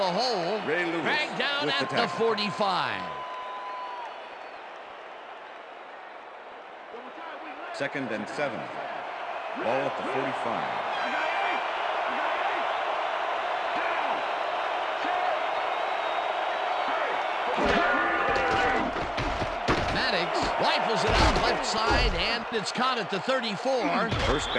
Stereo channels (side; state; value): both; identical; correlation 1.00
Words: hole. Dragged down at the 45. Second and 7. Ball at the 45. Maddox rifles it out left side, and it's caught at the 34. First